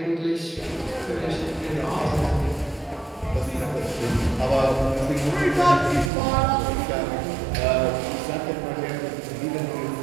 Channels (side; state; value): left; drops out; at 6.1 s